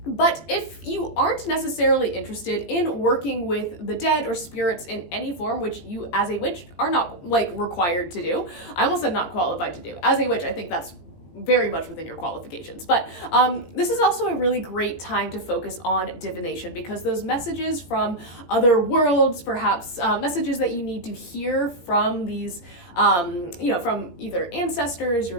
But if you aren't necessarily interested in working with the dead or spirits in any form, which you as a witch are not like required to do, I almost said not qualified to do. As a witch, I think that's very much within your qualifications. But this is also a really great time to focus on divination, because those messages from other worlds, perhaps messages that you need to hear from these, from either ancestors, your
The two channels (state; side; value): late; right; 17 ms